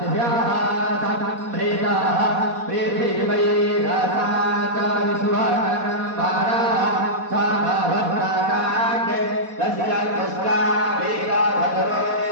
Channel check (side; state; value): left; late; 4.1 ms